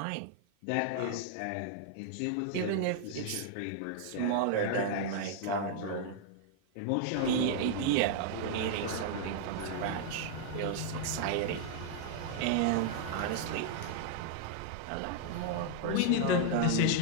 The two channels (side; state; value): both; different; correlation -0.01